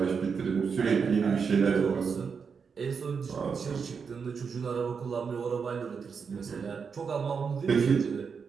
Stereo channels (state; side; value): quieter; left; 5.9 dB